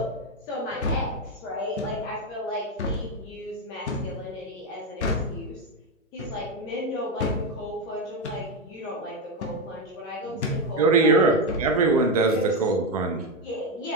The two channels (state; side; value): normal; both; correlation 0.10